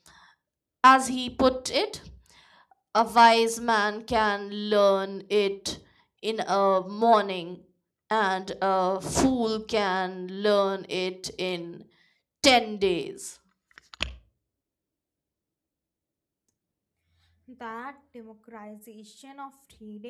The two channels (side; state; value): both; identical; correlation 1.00